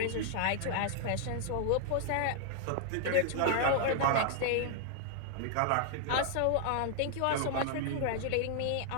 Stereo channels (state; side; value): different; both; correlation -0.01